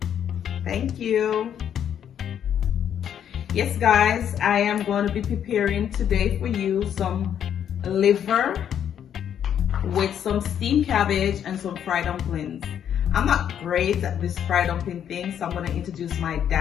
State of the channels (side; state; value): right; quieter; 9.3 dB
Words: Thank you. Yes guys, I am going to be preparing today for you some liver with some steamed cabbage and some fried dumplings. I'm not great at this fried dumpling thing, so I'm going to introduce my